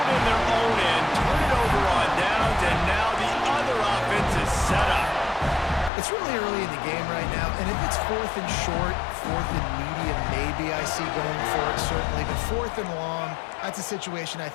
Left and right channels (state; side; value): drops out; right; at 5.9 s